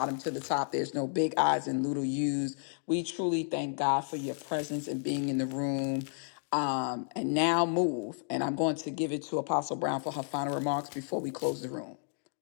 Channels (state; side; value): silent; right; digital silence